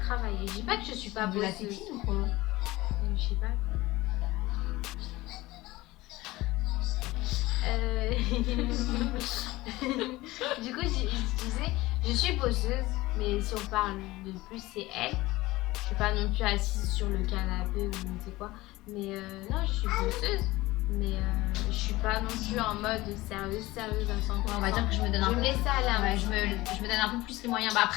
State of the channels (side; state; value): right; quieter; 19.2 dB